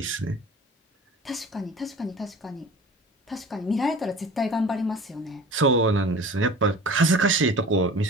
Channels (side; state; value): both; normal; correlation 0.41